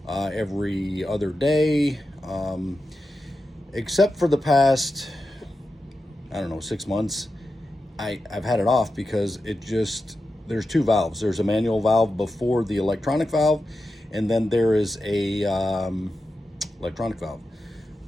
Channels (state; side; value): normal; both; correlation 0.90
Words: every other day, except for the past, I don't know, 6 months. I've had it off because there's two valves. There's a manual valve before the electronic valve, and then there is a electronic valve.